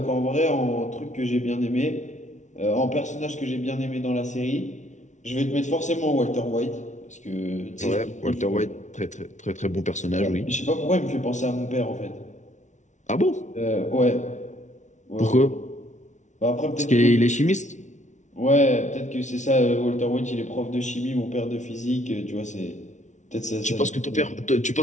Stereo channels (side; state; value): right; late; 0.35 ms